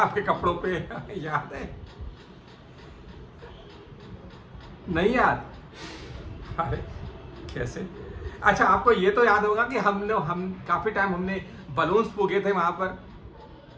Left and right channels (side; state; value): both; identical; correlation 1.00